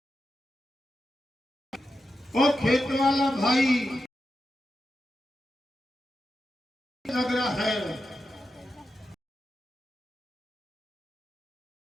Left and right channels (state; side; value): normal; both; correlation 0.89